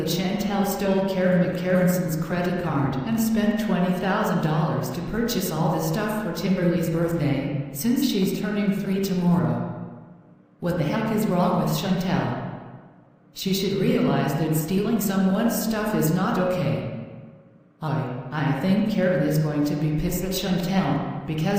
Chantel stole Karen McCarranson's credit card and spent $20,000 to purchase all this stuff for Timberley's birthday, since she's turning 3 tomorrow. What the heck is wrong with Chantel? She should realize that stealing someone's stuff is not okay. I think Karen is going to be pissed at Chantel,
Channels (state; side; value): identical; both; correlation 1.00